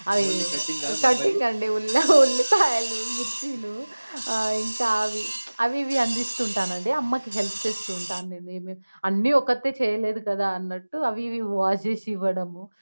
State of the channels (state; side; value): inverted; both; correlation -1.00